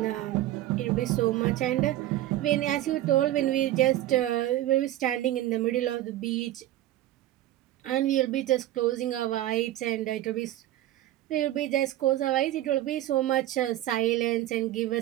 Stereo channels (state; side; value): quieter; left; 14.2 dB